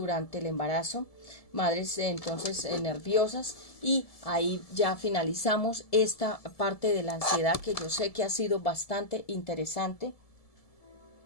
el embarazo, madres entonces nerviosas, y ahí ya finalizamos esta parte de la ansiedad, que yo sé que ha sido bastante interesante.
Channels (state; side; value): late; right; 1.7 ms